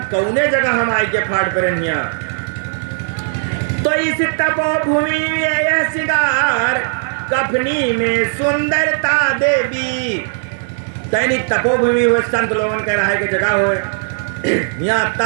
कौने जगह हम आई के फाड़ पर हिया। तो इस तपोभूमि यह सिंगार, कफनी में सुंदरता देवी। तैनी तपोभूमि हुए संत लोगन कह रहा है कि जगह हो यहाँ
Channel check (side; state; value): left; silent; 59 dB below the other